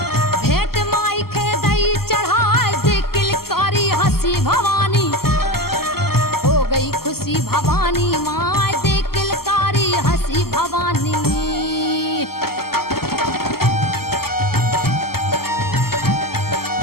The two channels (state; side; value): late; right; 0.94 ms